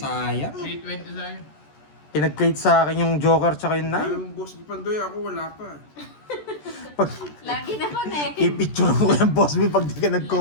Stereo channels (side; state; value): right; late; 14 ms